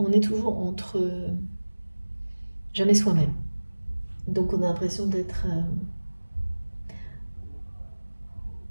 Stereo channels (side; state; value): both; inverted; correlation -1.00